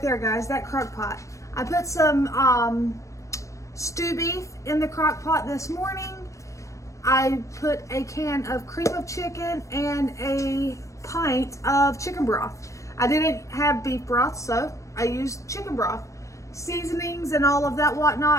guys, that crock pot. I put some stew beef in the crock pot this morning. I put a can of cream of chicken and a pint of chicken broth. I didn't have beef broth, so I used chicken broth. Seasonings and all of that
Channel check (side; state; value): right; late; 0.15 ms